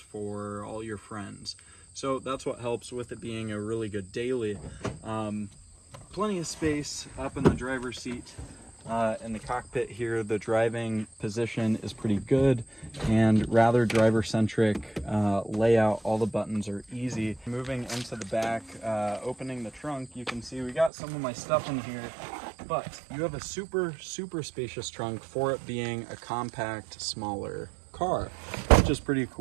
all your friends. So that's what helps with it being a really good daily. Plenty of space up in the driver's seat. In the cockpit here, the driving position is pretty good and rather driver-centric layout. All the buttons are easy. Moving into the back, opening the trunk, you can see we got some of my stuff in here, but you have a super spacious trunk for it being a compact, smaller car, which is pretty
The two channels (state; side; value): drops out; left; at 20.9 s